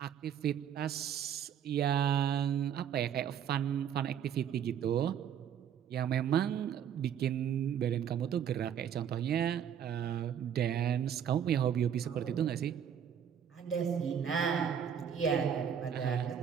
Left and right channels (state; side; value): quieter; left; 8.7 dB